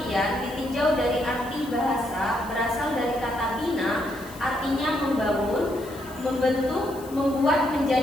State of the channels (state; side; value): noise; left; hiss, 20 dB below the sound